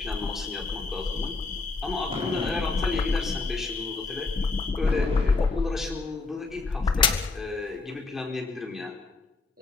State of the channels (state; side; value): quieter; right; 3.9 dB